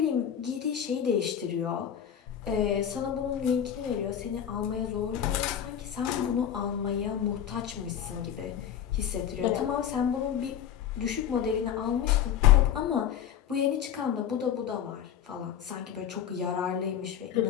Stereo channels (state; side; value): quieter; right; 9.4 dB